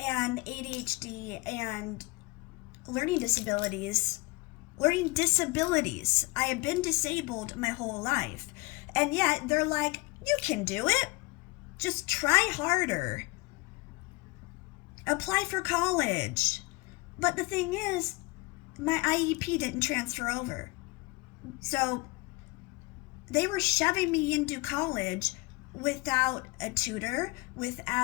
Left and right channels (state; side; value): quieter; right; 25.5 dB